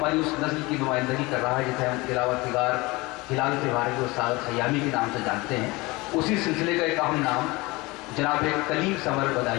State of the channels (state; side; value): quieter; right; 23.0 dB